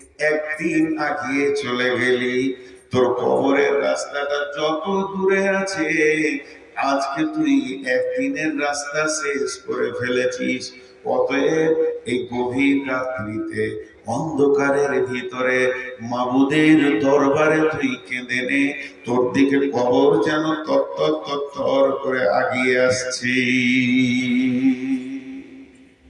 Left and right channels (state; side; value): identical; both; correlation 1.00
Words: একদিন আগিয়ে চলে গেলি। তোর কবরের রাস্তাটা যত দূরে আছে, আজকে তুই একদিনের রাস্তা শেষ করে ফেলেছিস। অতএব এই গভীর রাত্রিতে অন্ধকারের ভিতরে মাবুদের দরবারে তুই কেঁদে নে, তোর দিকে কবর যেন তত্তর তত্তর করে আগিয়ে আসছে।